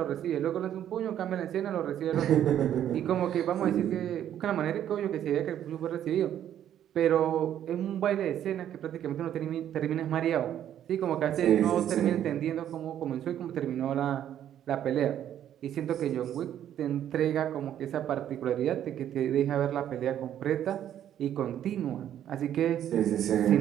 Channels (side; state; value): left; quieter; 10.7 dB